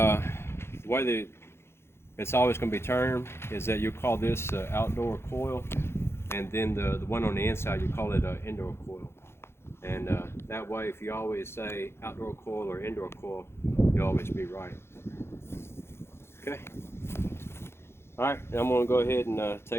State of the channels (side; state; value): right; late; 0.12 ms